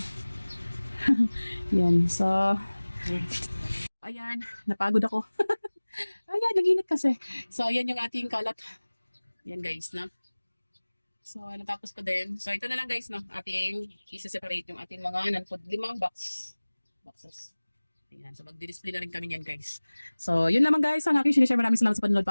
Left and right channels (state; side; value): inverted; both; correlation -1.00